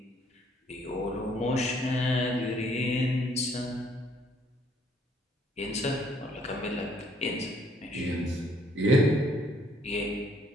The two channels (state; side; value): normal; both; correlation 0.64